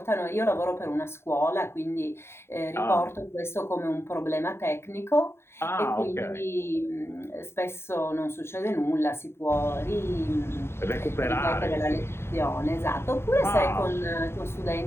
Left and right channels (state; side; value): late; right; 0.12 ms